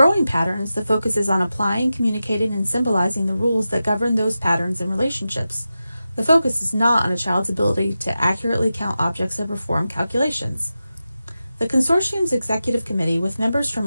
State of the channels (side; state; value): both; inverted; correlation -0.92